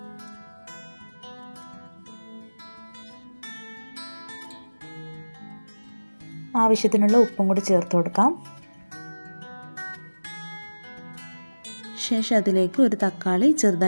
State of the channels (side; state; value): both; inverted; correlation -1.00